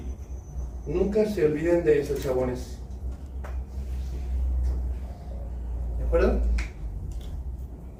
Nunca se olviden de eso, chabones. ¿De acuerdo?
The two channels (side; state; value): both; identical; correlation 1.00